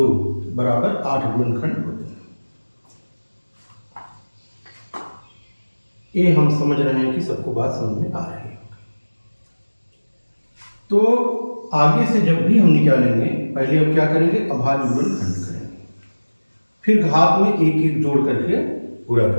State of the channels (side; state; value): both; inverted; correlation -1.00